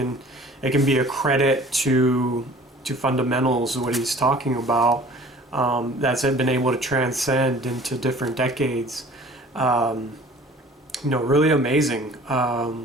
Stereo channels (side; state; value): both; normal; correlation 0.48